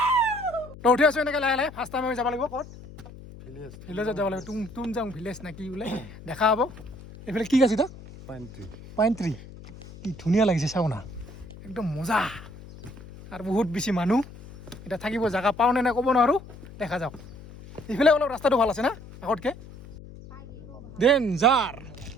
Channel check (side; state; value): left; noise; hum, 17 dB below the sound